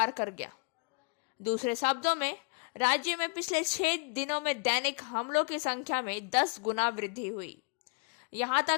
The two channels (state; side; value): quieter; right; 36.4 dB